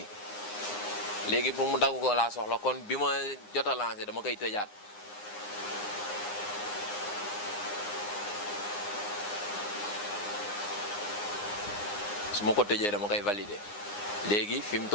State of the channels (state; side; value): late; right; 9.7 ms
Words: pour mu dagg ko laa soxla kon bi ma jot a lancé dama koy tëjaat. su ma ko tëjee dama koy valider léegi fi mu